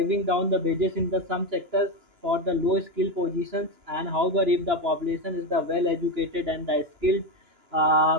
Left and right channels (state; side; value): late; left; 2.9 ms